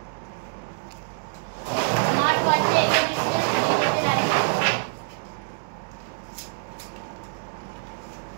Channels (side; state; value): left; silent; digital silence